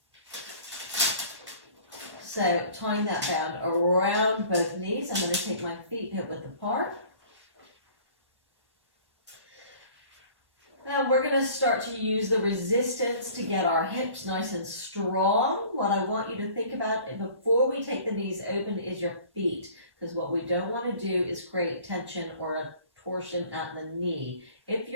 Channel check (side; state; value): left; late; 1.1 ms